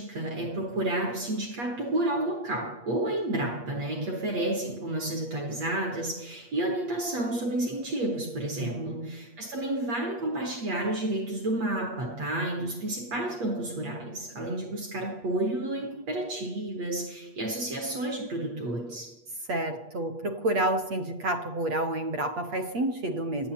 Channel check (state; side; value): late; left; 8.4 ms